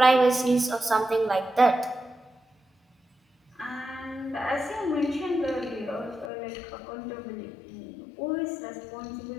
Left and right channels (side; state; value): right; drops out; at 6.3 s